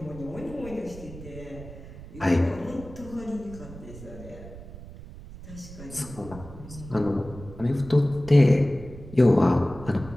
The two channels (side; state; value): right; noise; rumble, 15 dB below the sound